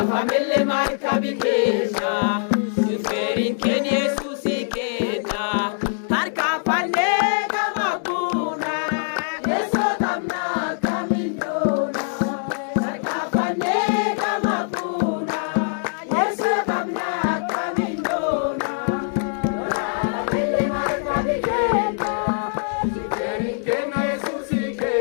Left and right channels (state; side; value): silent; right; digital silence